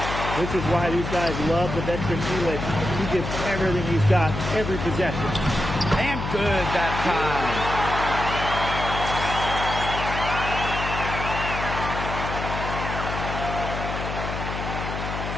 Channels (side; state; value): left; noise; hum, 5 dB below the sound